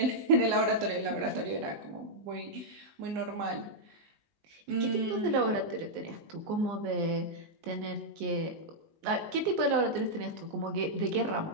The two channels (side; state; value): left; late; 19 ms